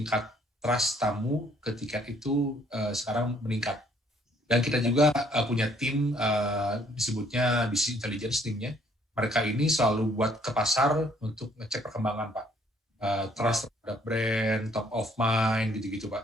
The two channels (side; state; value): both; normal; correlation 0.64